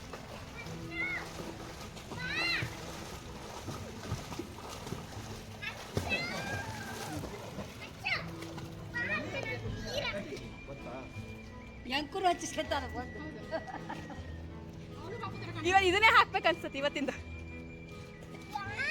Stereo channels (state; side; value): identical; both; correlation 1.00